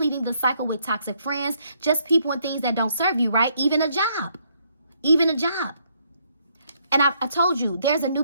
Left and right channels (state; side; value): inverted; both; correlation -0.71